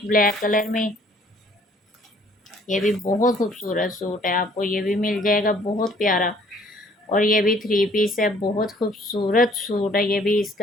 ब्लैक कलर में, ये भी बहुत खूबसूरत सूट है, आपको ये भी मिल जाएगा, बहुत प्यारा। और ये भी 3 पीस है, बहुत खूबसूरत सूट है। ये भी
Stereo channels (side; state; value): both; normal; correlation 0.59